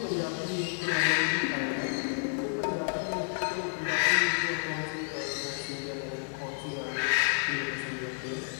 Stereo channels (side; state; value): right; silent; digital silence